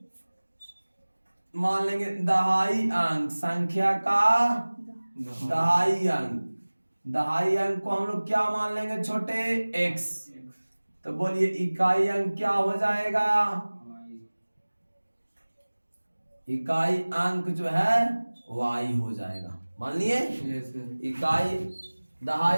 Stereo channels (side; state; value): both; inverted; correlation -1.00